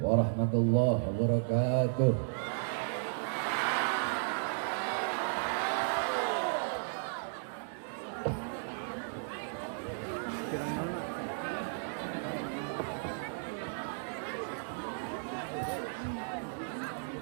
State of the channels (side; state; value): left; silent; digital silence